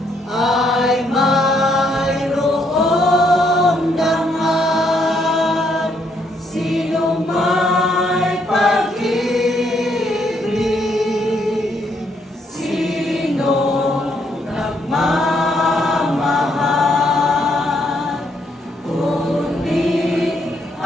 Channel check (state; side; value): normal; both; correlation 0.73